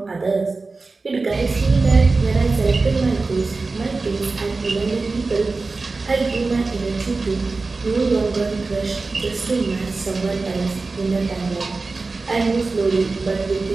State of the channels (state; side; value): quieter; left; 3.8 dB